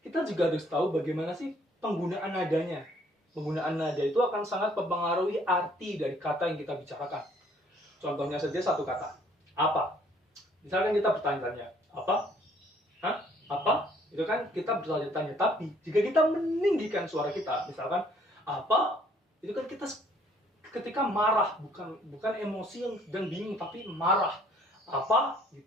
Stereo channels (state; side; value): normal; both; correlation 0.61